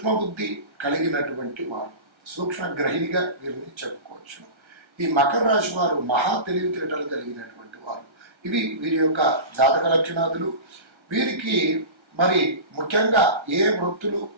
బుద్ధి కలిగినటువంటి వారు, సూక్ష్మ గ్రహిణిగా వీరిని చెప్పుకోవచ్చు. ఈ మకర రాశి వారు మహా తెలివితేటలు కలిగినటువంటి వారు. ఇవి వీరి యొక్క జాతక లక్షణాదులు. వీరికి మరి ముఖ్యంగా ఏ వృత్తులు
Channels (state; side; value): late; left; 1.3 ms